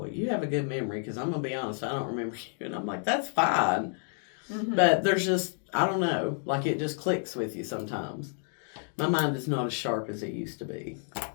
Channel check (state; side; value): silent; right; 58 dB below the other